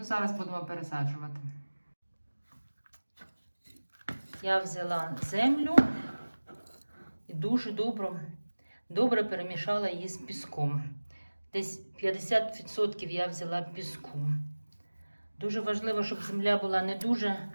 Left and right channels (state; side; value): inverted; both; correlation -1.00